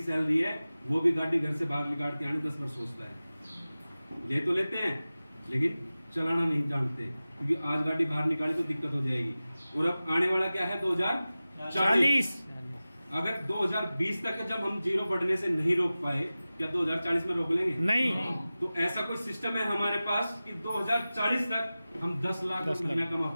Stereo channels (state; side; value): inverted; both; correlation -0.96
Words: सैलरी है, वो भी गाड़ी घर से बाहर निकाल के आने 10 बार सोचता है। ले तो लेते हैं लेकिन चलाना नहीं जानते, क्योंकि आज गाड़ी बाहर निकाले तो दिक्कत हो जाएगी। और अब आने वाला क्या है? 2040। अगर 2020 तक जब हम जीरो बढ़ने से नहीं रोक पाए, क्या 2040 में रोक लेंगे? नहीं। तो ऐसा कोई सिस्टम है हमारे पास कि 2040 तक हम 10 लाख महीना कमा